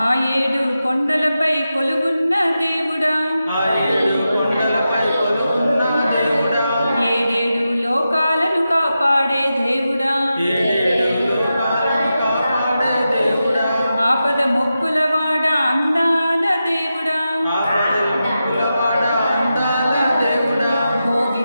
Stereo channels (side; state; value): both; inverted; correlation -0.90